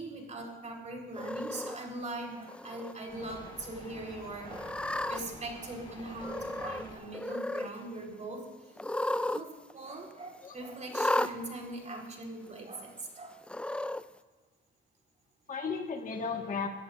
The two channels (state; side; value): normal; both; correlation 0.66